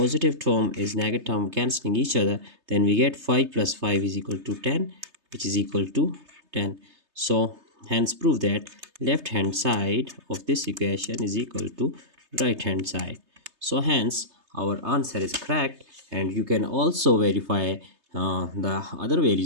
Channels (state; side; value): late; left; 3.3 ms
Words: term is negative term cancelling each other, then we get 5 plus 5 is equal to 10, which is equal to 10. So hence prove that left hand side of this equation is equal to right hand side. So hence our answer is correct, and you can also verify the other